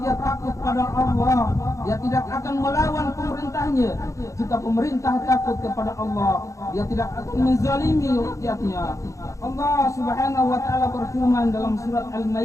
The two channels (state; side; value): late; right; 0.15 ms